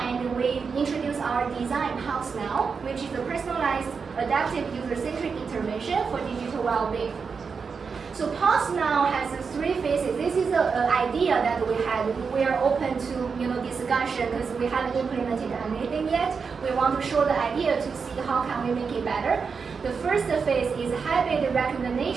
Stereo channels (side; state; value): left; quieter; 5.5 dB